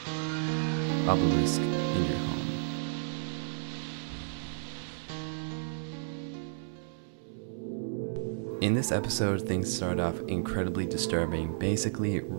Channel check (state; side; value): silent; left; 56 dB below the other